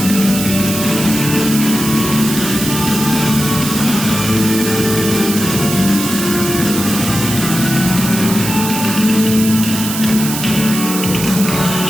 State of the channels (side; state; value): right; noise; hiss, 5 dB below the sound